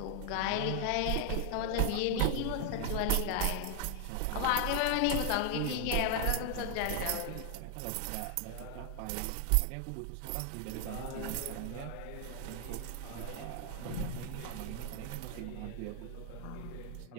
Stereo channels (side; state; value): both; different; correlation 0.00